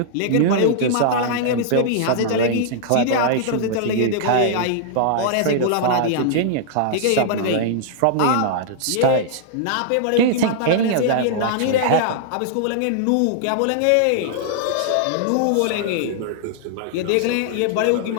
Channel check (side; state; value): both; different; correlation -0.01